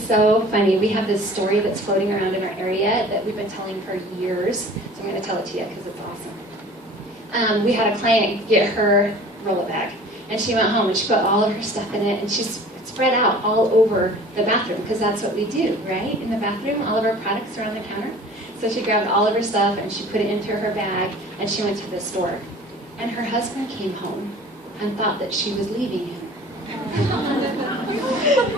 so funny. We have this story that's floating around in our area that we've been telling for years. So I'm going to tell it to you because it's awesome. We had a client get her roll-it bag. And she went home and she put all of her stuff in it and she's spread out all over the bathroom because that's what we do, right? In the bathroom, all of our products are on the counter. So she grabbed all of her stuff and she put it into her bag and she went to the store. And her husband came home and thought that she was leaving him.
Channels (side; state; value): both; normal; correlation 0.45